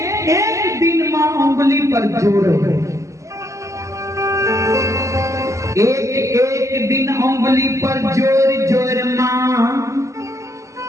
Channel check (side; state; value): left; late; 0.15 ms